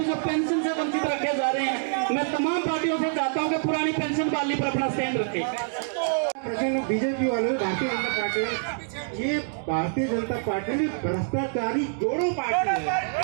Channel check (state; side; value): silent; left; digital silence